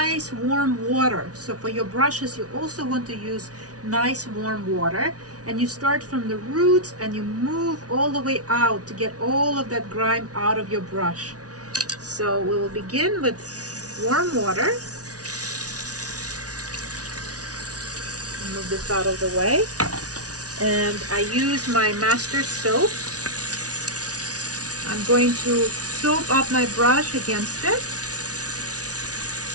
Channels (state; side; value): late; left; 0.68 ms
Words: warm water. So for your brushes, you also want to use nice warm water, and you start from the roots and you move all the way out to get all of that grime out of your brush. So we will begin with warm water. Move this out of the way, and I use my master soap. I'm going to soap up my brush against it.